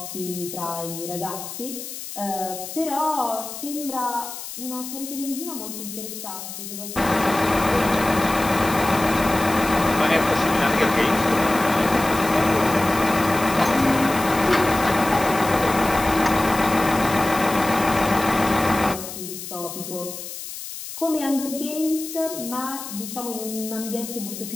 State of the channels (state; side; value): noise; left; hiss, 10 dB below the sound